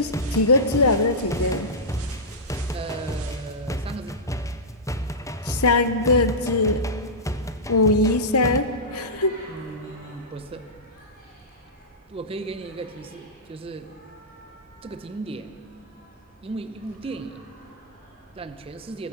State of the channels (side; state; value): both; normal; correlation -0.13